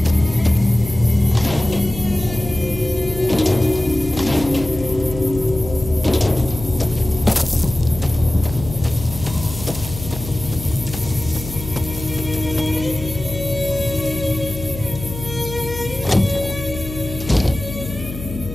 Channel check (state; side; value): noise; left; hum, 10 dB below the sound